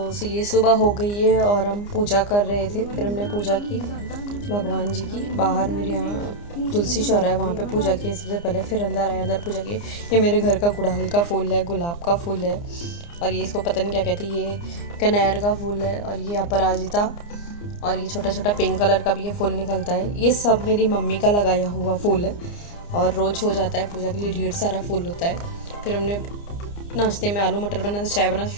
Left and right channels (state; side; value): late; right; 29 ms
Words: सो ये सुबह हो गई है और हम पूजा कर रहे थे। फिर हमने पूजा की भगवान जी की। बाहर मेरे यहाँ तुलसी चौरा है, वहाँ पे पूजा की सबसे पहले। फिर अंदर आए, अंदर पूजा की। ये मेरे घर का गुड़हल का फूल है, गुलाब का फूल है, और ये इसको पता नहीं क्या कहते हैं, ये कनेर का फूल है, और ये अपराजिता, और ये छोटा छोटा पिंक कलर का भी ये फूल निकलता है। ये सब मेरी मम्मी का लगाया हुआ फूल है और रोज़ हो जाता है पूजा के लिए, ढेर सारा फूल होता है। फिर हमने नाश्ते में आलू मटर बना था, चाय बना,